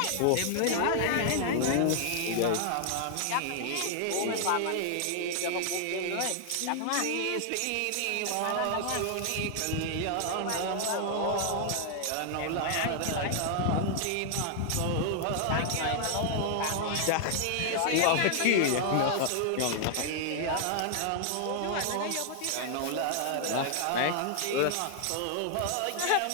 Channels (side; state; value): both; different; correlation 0.00